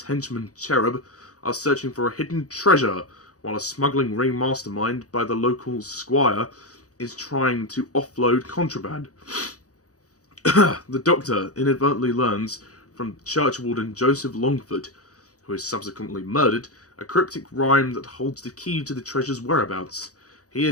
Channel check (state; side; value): late; right; 0.67 ms